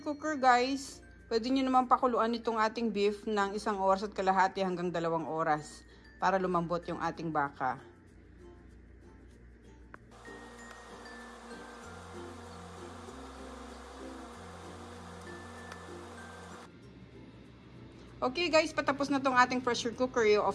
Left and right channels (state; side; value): identical; both; correlation 1.00